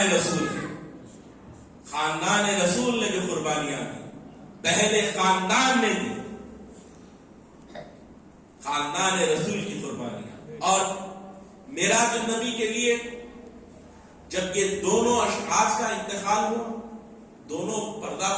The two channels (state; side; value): identical; both; correlation 1.00